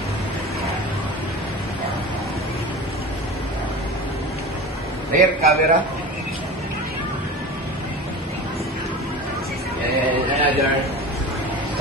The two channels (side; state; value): both; normal; correlation 0.33